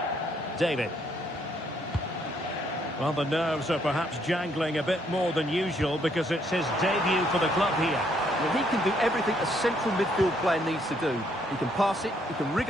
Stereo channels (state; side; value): normal; both; correlation 0.70